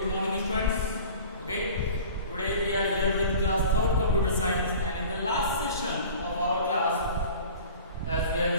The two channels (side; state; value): both; inverted; correlation -0.42